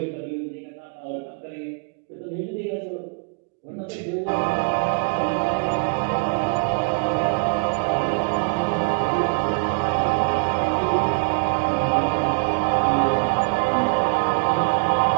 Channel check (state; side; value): quieter; left; 37.9 dB